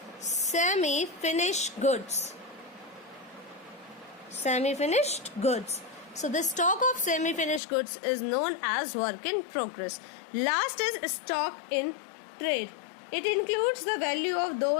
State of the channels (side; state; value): right; drops out; at 7.6 s